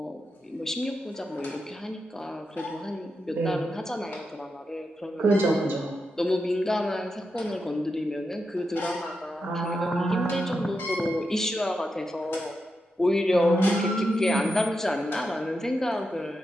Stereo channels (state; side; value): normal; both; correlation 0.87